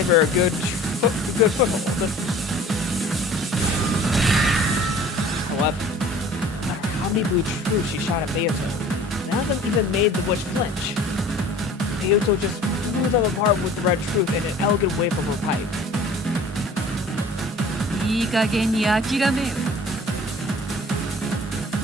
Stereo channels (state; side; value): normal; both; correlation 0.47